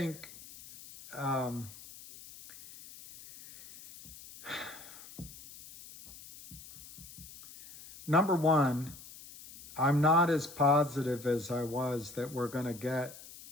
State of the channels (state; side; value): noise; left; hiss, 17 dB below the sound